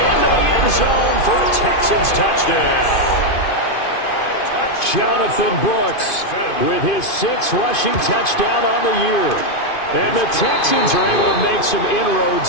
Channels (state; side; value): late; right; 2.5 ms